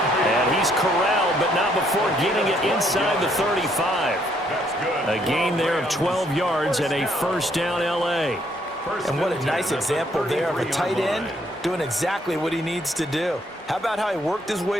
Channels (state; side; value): normal; both; correlation 0.69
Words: And he's corralled, but not before getting it inside the 35. A gain there of 12 yards and a first down L.A. And what a nice example there of a tight end doing exactly what he needs to do. How about how he worked his